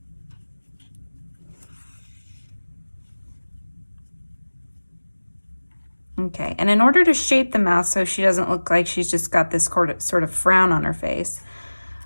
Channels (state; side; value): inverted; both; correlation -1.00